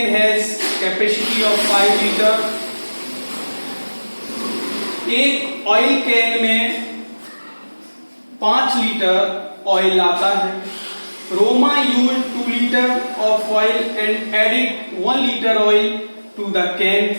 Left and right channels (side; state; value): both; inverted; correlation -1.00